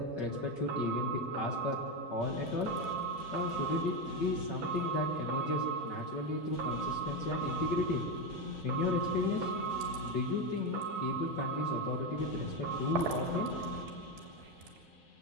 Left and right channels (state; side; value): normal; both; correlation 0.11